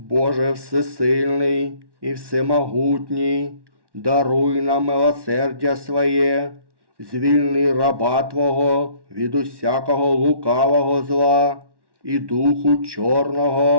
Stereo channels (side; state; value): left; late; 1.1 ms